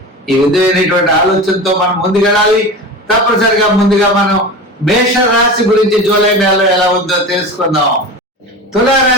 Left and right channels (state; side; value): normal; both; correlation 0.30